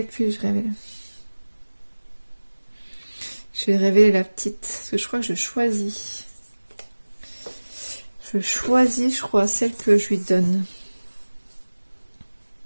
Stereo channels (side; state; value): both; inverted; correlation -1.00